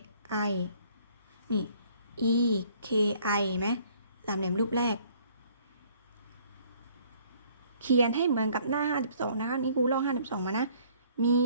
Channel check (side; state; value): both; inverted; correlation -0.60